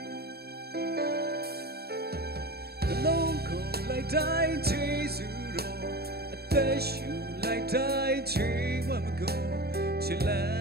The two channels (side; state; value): left; late; 0.46 ms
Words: လုံးကိုလိုက်တိုင်းဂျေဇုတော်အသက်ရှူလိုက်တိုင်းချီဝမကုန်ချစ်လန်